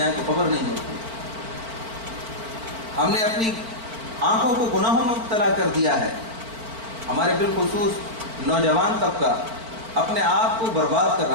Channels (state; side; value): late; left; 4.4 ms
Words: تو خبر نہیں ہوتی۔ ہم نے اپنی آنکھوں کو گناہوں میں مبتلا کر دیا ہے۔ ہمارے بالخصوص نوجوان طبقہ اپنے آپ کو برباد کر